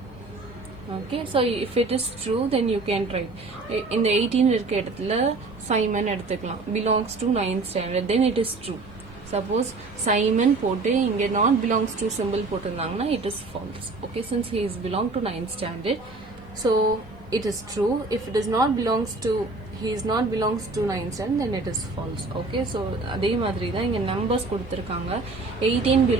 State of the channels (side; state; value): left; quieter; 3.5 dB